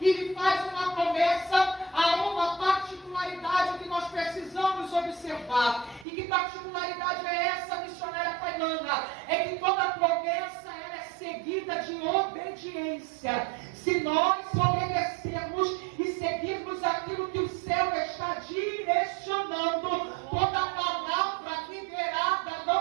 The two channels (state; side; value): drops out; left; at 6.1 s